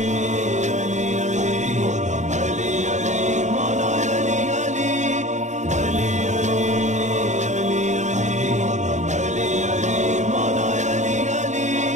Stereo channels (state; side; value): late; left; 0.34 ms